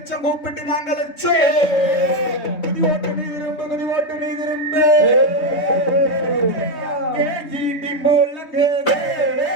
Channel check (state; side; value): late; right; 3.6 ms